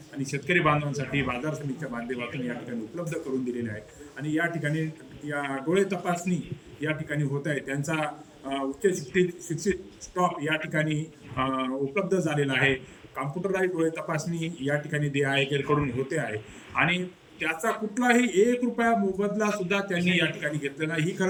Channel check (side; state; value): both; identical; correlation 1.00